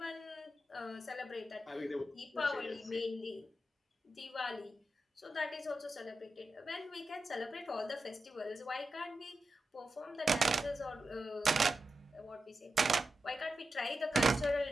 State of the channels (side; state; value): both; normal; correlation 0.90